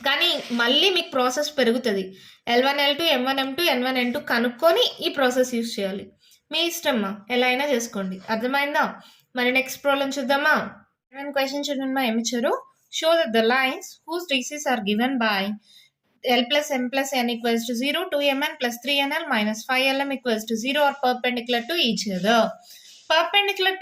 కానీ మళ్ళీ మీకు ప్రాసెస్ పెరుగుతుంది. L1L2 M1M2 N1N2 కనుక్కొని ఈ ప్రాసెస్ యూస్ చేయాలి. మీ ఇష్టమ్మా, ఎలా అయినా చేసుకోండి. అర్థమైందా? మరి నెక్స్ట్ ప్రాబ్లం చూద్దామా? క్వశ్చన్ చూడండి. ఏమి ఇచ్చారు? Show that the lines whose DCs are given by L plus M plus N equals to 0, 2Mn plus 3NL minus 5LM equals to 0 are perpendicular to each other. Perpendicular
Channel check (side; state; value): both; identical; correlation 1.00